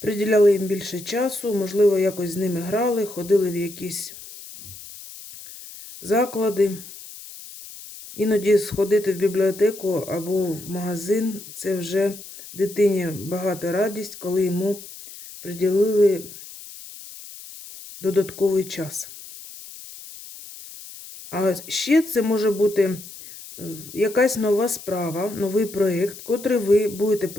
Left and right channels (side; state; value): left; noise; hiss, 15 dB below the sound